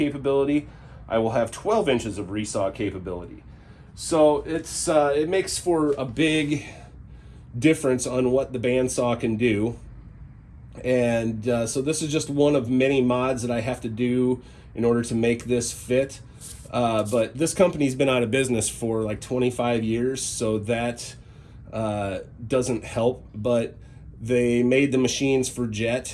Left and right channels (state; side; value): identical; both; correlation 1.00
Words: I will have 12 inches of resaw capability. So it's it makes for a big difference on what the bandsaw can do. And so this is just one of many mods that I have to do in order to make this fit. But this company's been out of business for like 25 years, so that doesn't help. But they made the machines for